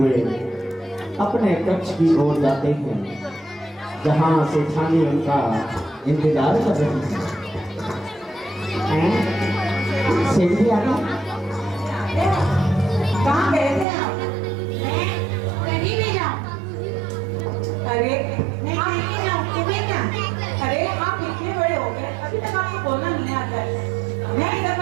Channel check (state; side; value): drops out; left; at 13.9 s